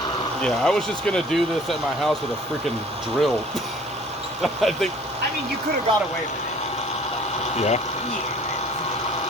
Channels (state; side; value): normal; both; correlation 0.52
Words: yeah, I was just gonna do this at my house with a freaking drill. I think. I mean, you could have got away with it. Yeah.